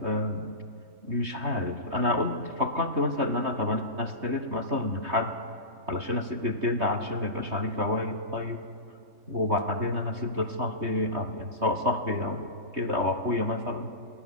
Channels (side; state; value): left; late; 3.2 ms